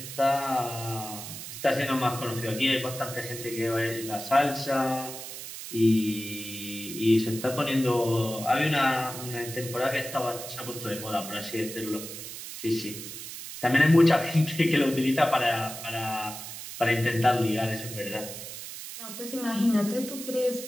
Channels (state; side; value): noise; right; hiss, 10 dB below the sound